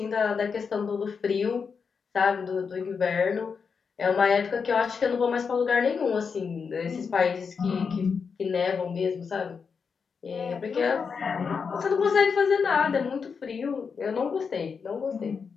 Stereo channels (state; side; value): quieter; right; 5.8 dB